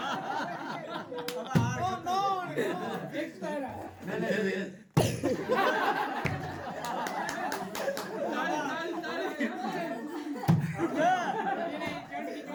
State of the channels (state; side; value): identical; both; correlation 1.00